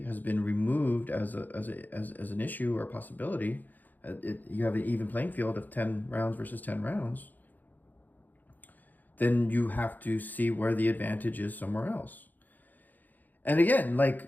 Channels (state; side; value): late; right; 0.084 ms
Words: has been removed as an issue or a possibility, you have an even playing field of 10 rounds versus 10 rounds. Then you have to see where the advantage is somewhere else. And again,